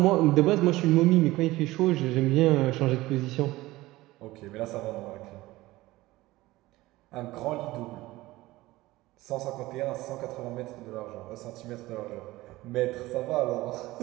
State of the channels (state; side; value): quieter; left; 18.5 dB